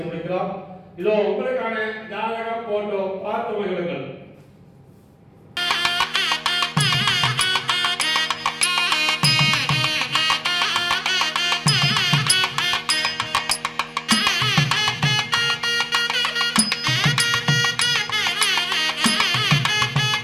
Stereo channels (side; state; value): both; identical; correlation 1.00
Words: முடிக்கலாம். இதோ உங்களுக்கான ஜாதகம், போட்டோ பார்த்து மகிழுங்கள்.